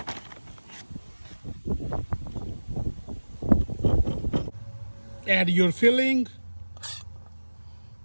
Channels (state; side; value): inverted; both; correlation -1.00